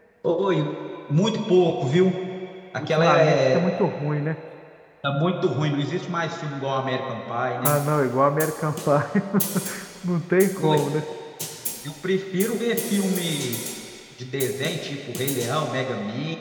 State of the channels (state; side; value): identical; both; correlation 1.00